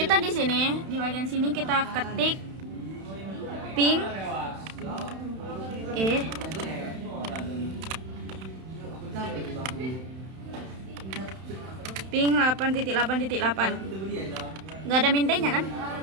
di sini, di bagian sini kita ketik ping ping 8.8.8. Nggak ada mintanya kan?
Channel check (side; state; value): left; late; 31 ms